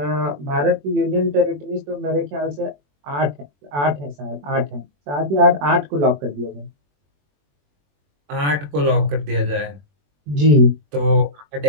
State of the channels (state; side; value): late; left; 21 ms